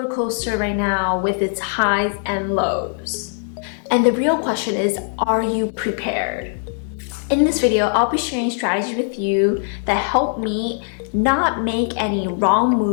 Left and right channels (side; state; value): right; silent; 57 dB below the other